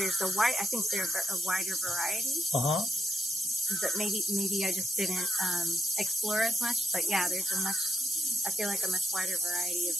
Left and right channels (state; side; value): normal; both; correlation 0.83